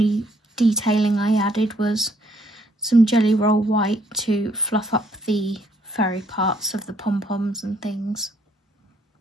detailing I added was some Jelly Roll White to fluff up the furry parts of the pom-poms and things.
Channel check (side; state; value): both; normal; correlation 0.67